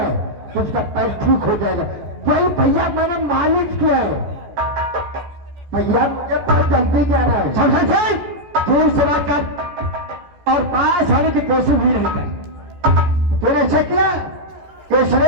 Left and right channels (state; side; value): late; left; 14 ms